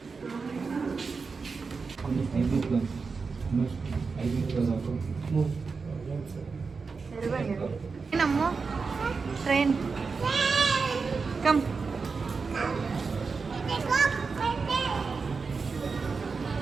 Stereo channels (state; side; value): quieter; left; 4.8 dB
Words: ನಮ್ಮ train come.